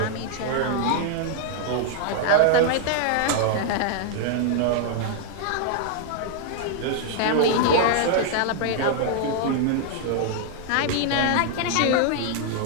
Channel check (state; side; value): different; both; correlation -0.01